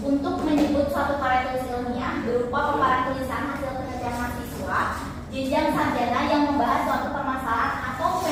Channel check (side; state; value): both; identical; correlation 1.00